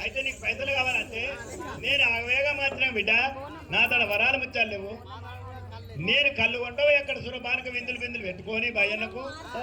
అయితే నీకు పైసలు కావాలంటే నేను ఆవేగా మాత్రం బిడ్డ నా తన వరాలు ముచ్చాలు లేవు. నేను కళ్ళు కొంటావు ఎక్కడ సురపానక విందులు బిందులు పెట్టుకొని భయ్యన్నకు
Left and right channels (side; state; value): both; identical; correlation 1.00